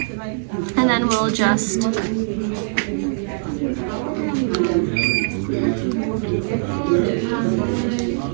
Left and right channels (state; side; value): silent; left; digital silence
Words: And then we'll just